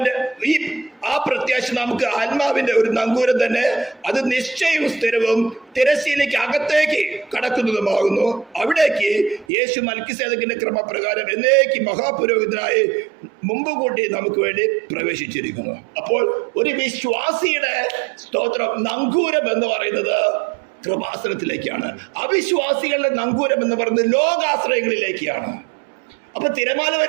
ആ പ്രത്യാശ നമുക്ക് ആത്മാവിന്റെ ഒരു നങ്കൂരം തന്നെ. അത് നിശ്ചയവും സ്ഥിരവും തിരശ്ശീലയ്ക്ക് അകത്തേക്ക് കടക്കുന്നതുമാകുന്നു. അവിടേക്ക് യേശു മൽക്കിസേദക്കിന്റെ ക്രമപ്രകാരം എന്നേക്ക് മഹാപുരോഹിതനായി മുമ്പ് കൂട്ടി നമുക്ക് വേണ്ടി പ്രവേശിച്ചിരിക്കുന്നു. അപ്പോൾ ഒരു വിശ്വാസിയുടെ സ്തോത്രം നങ്കൂരം എന്ന് പറയുന്നത് കൃപാസനത്തിലേക്കാണ്. അവിശ്വാസികളുടെ നങ്കൂരം എന്ന് പറയുന്നത് ലോകാശ്രയങ്ങളിലേക്കാണ്. അപ്പൊ തിരമാല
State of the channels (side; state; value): left; drops out; at 9.5 s